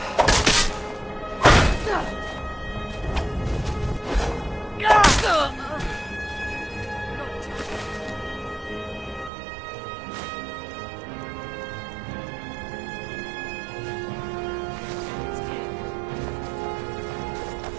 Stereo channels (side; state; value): left; drops out; at 9.3 s